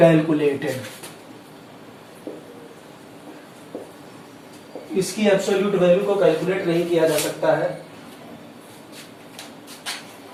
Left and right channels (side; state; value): both; identical; correlation 1.00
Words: इसकी एब्सोल्यूट वैल्यू को कैलकुलेट नहीं किया जा सकता है।